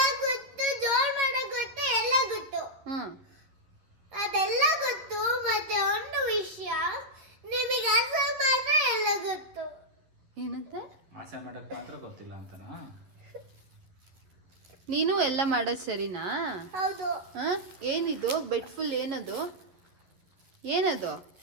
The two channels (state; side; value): late; left; 11 ms